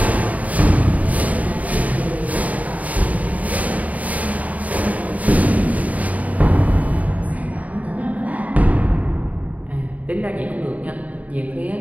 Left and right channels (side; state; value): left; late; 0.071 ms